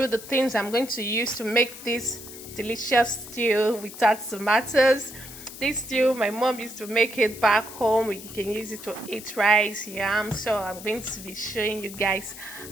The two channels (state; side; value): noise; left; hiss, 14 dB below the sound